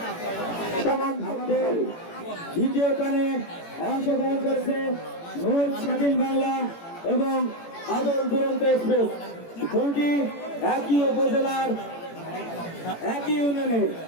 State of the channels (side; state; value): right; late; 18 ms